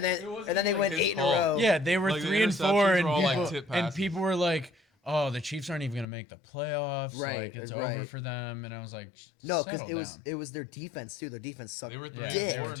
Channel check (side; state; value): right; drops out; at 6.1 s